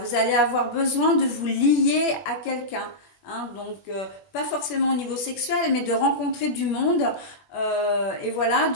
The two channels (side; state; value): right; late; 20 ms